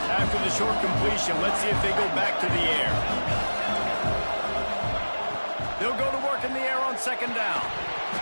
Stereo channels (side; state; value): both; inverted; correlation -1.00